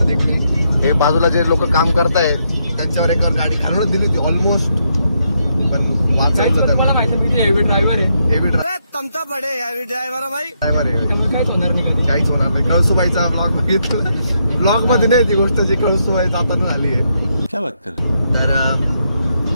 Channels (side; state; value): both; inverted; correlation -0.78